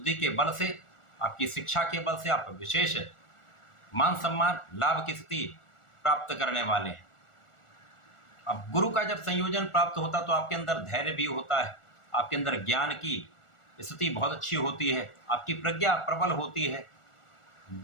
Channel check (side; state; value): right; late; 1.4 ms